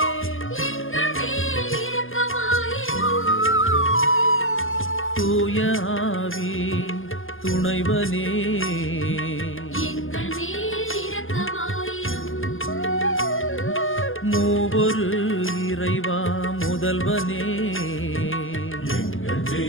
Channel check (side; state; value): right; late; 0.59 ms